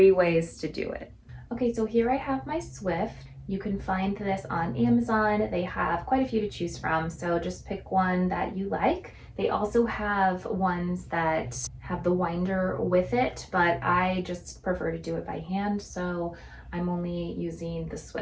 ways to do it. Okay, so here I have my Swift. You can find this on Amazon. They have quite a few to choose from, so just pick one that you like. They also have ones that have the winder with it, but I just prefer to do it by hand, so I'm only using the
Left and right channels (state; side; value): identical; both; correlation 1.00